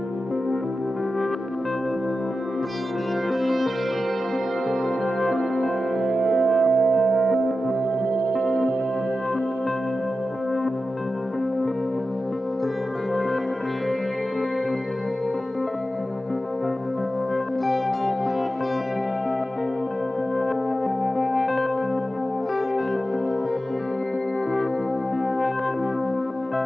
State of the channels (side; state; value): both; normal; correlation 0.92